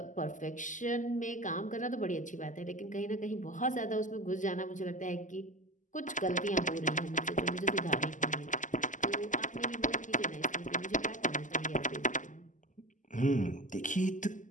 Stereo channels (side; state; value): right; late; 0.37 ms